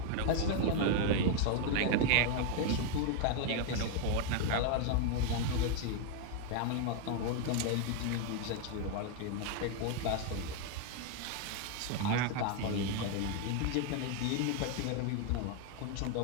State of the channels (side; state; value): both; different; correlation 0.01